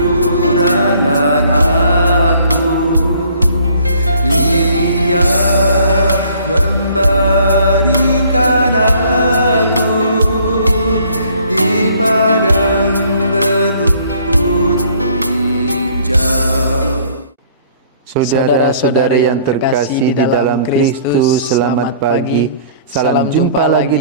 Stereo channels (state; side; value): inverted; both; correlation -0.58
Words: aku. Ia membaringkan aku di padang berumput hijau. Saudara-saudari yang terkasih di dalam Kristus, selamat pagi. Salam jumpa lagi